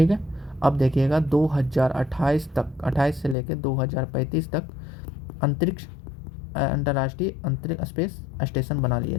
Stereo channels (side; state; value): right; drops out; at 3.4 s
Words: है। अब देखिएगा 2028 तक, 28 से लेकर 2035 तक अंतर्राष्ट्रीय अंतरिक्ष स्पेस स्टेशन बना